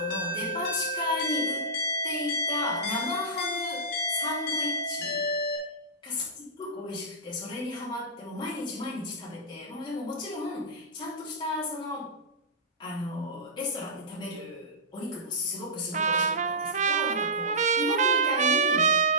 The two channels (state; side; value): normal; both; correlation -0.16